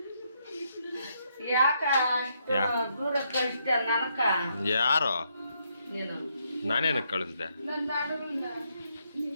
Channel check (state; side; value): inverted; both; correlation -0.76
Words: ಯಾಕ ದೂರ ಕಳಿಸ್ತ ನನಕ ಯಾರು ನೀನು ನಾನೇನಕ್ಕೆ ಕಳಿಸ್ದೆ?